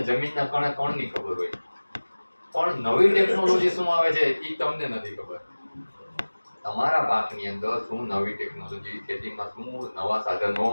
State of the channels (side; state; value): both; inverted; correlation -1.00